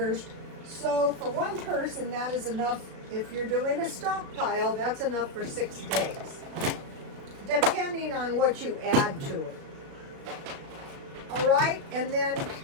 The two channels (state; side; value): late; left; 37 ms